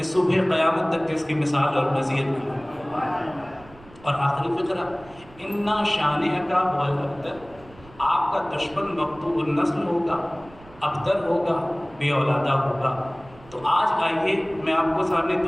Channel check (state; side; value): noise; right; rumble, 23 dB below the sound